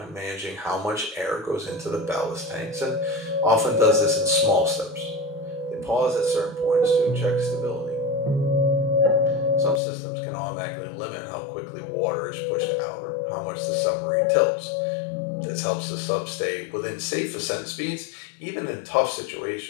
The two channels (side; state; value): right; drops out; at 9.8 s